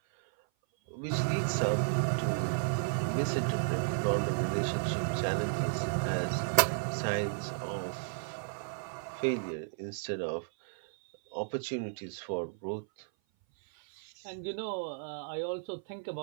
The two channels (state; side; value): silent; left; 56 dB below the other